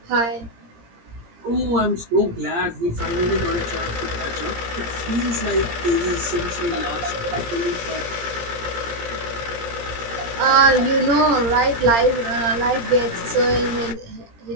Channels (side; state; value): left; late; 17 ms